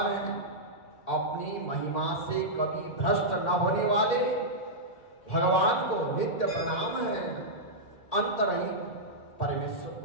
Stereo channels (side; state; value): right; late; 1.8 ms